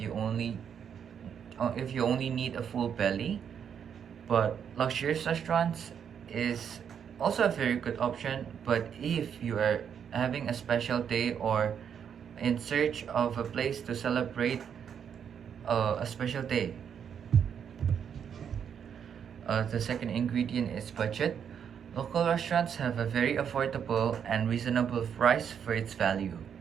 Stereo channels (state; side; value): quieter; left; 7.9 dB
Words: only need a full belly, but luxurious restaurants is also a very good option. But if you are having a special day or in search of a place to celebrate a special day, the second ingredient is budget. Local restaurants have a very affordable and reasonable price for its value,